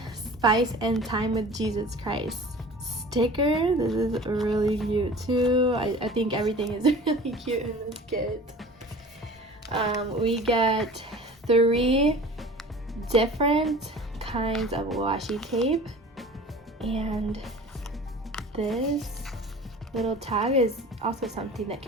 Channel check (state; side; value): normal; both; correlation 0.42